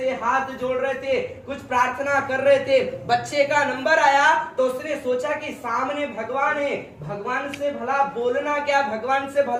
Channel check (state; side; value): identical; both; correlation 1.00